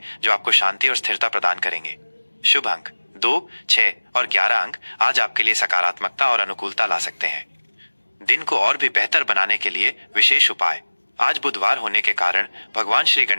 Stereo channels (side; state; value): both; inverted; correlation -1.00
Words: जो आपको शांति और स्थिरता प्रदान करेंगे। शुभ अंक 2, 6 और 11 अंक आज आपके लिए सकारात्मकता और अनुकूलता ला सकते हैं। दिन को और भी बेहतर बनाने के लिए विशेष उपाय। आज बुधवार होने के कारण भगवान श्री